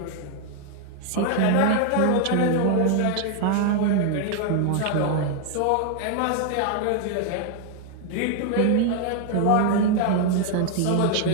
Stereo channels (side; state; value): both; different; correlation 0.00